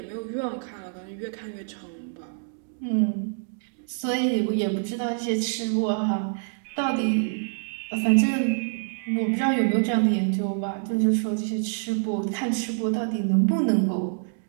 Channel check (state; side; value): silent; left; digital silence